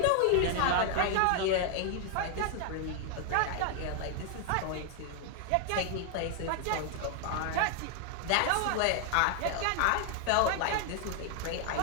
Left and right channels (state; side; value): different; both; correlation 0.00